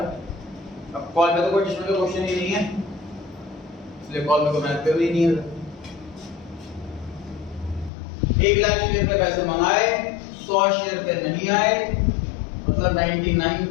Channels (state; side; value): drops out; right; at 7.9 s